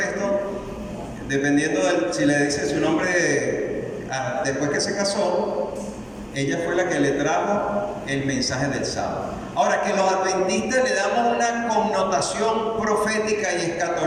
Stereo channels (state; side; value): identical; both; correlation 1.00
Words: dependiendo si le dice su nombre después que se casó, ella fue la que le trajo el mensaje del sábado. Ahora, que los adventistas le damos una connotación profética y